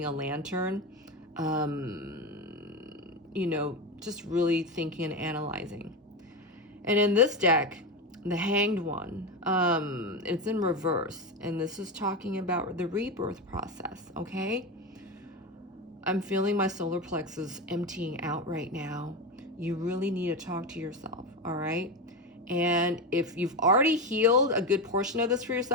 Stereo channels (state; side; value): normal; both; correlation 0.16